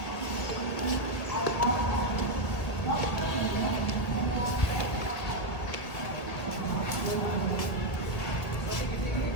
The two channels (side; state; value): right; late; 1.9 ms